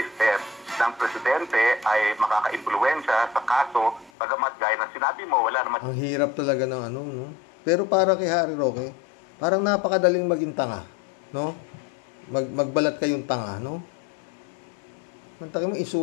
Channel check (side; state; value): right; drops out; at 4.1 s